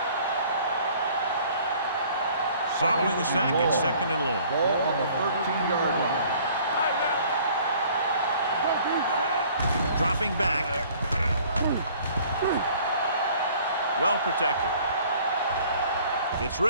Following the sack, it's 2nd and long. Ball on the 13-yard line. Dropping back. Well protected. Gets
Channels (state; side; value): inverted; both; correlation -0.54